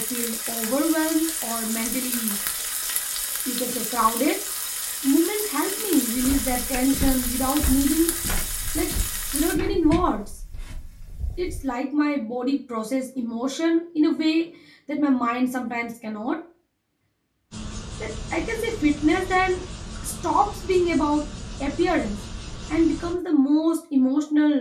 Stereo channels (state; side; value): identical; both; correlation 1.00